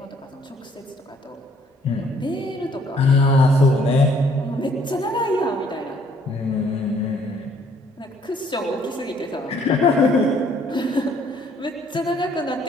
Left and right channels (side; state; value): both; normal; correlation 0.63